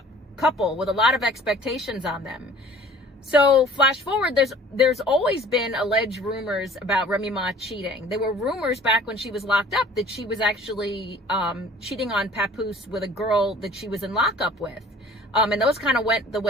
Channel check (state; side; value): normal; both; correlation 0.49